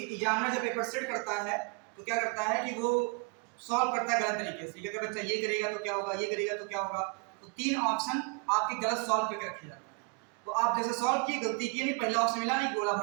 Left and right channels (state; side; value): quieter; left; 34.2 dB